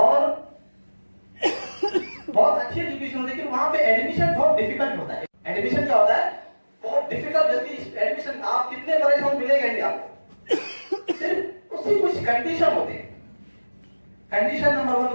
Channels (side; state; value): both; inverted; correlation -1.00